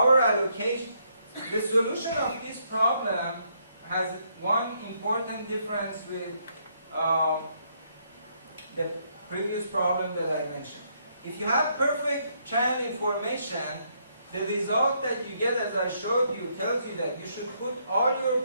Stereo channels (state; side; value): inverted; both; correlation -0.73